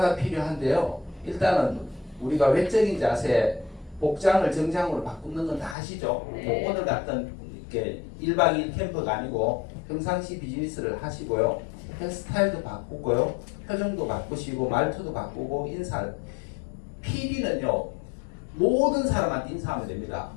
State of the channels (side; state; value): right; drops out; at 5.8 s